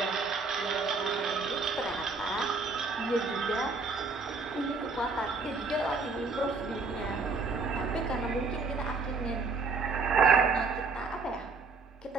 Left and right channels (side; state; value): left; quieter; 4.2 dB